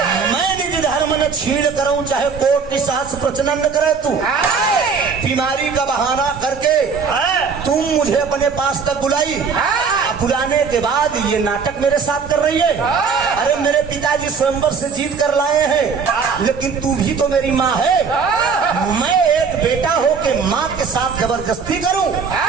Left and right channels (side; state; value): left; quieter; 5.6 dB